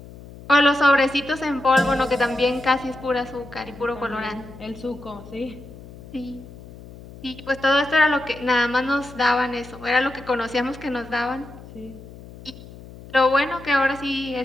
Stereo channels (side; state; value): left; noise; hum, 17 dB below the sound